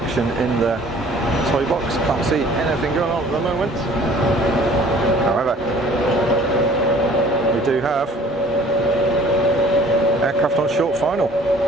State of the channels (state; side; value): normal; both; correlation 0.52